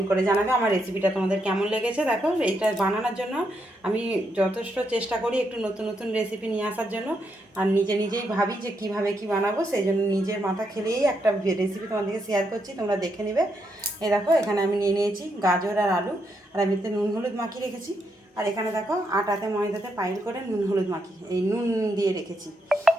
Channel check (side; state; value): both; normal; correlation 0.79